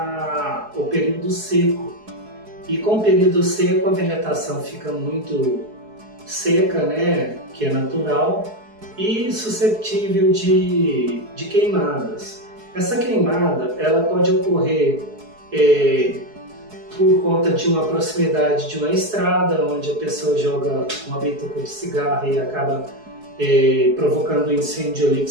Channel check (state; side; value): late; left; 4.7 ms